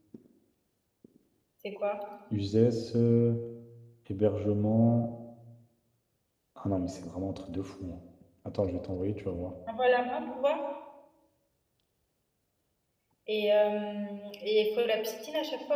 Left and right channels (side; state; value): both; identical; correlation 1.00